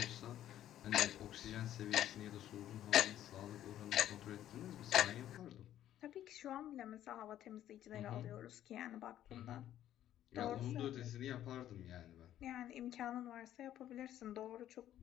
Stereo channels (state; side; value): quieter; right; 11.9 dB